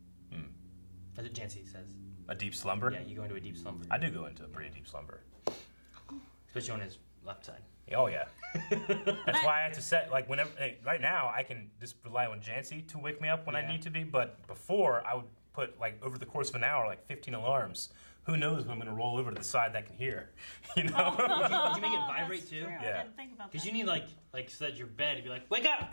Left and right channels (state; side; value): inverted; both; correlation -1.00